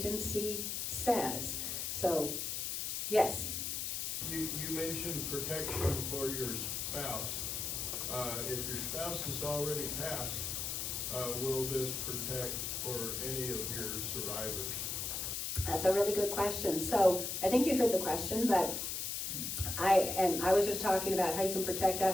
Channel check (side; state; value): left; noise; hiss, 2 dB below the sound